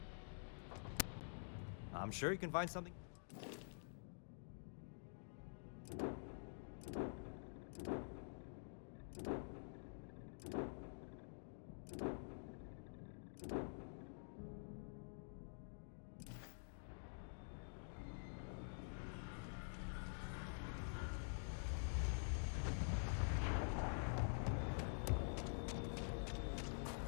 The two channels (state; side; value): silent; right; digital silence